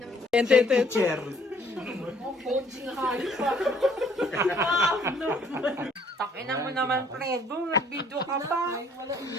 Chair. Takinan mo naman, Fredo. Nag-video ka pa.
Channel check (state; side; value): normal; both; correlation 0.61